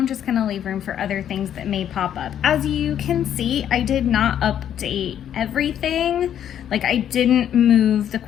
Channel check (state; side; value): quieter; right; 9.9 dB